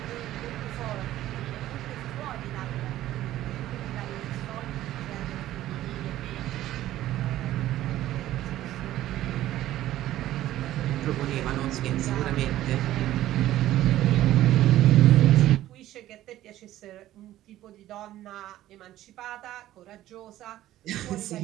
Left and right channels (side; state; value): left; quieter; 14.0 dB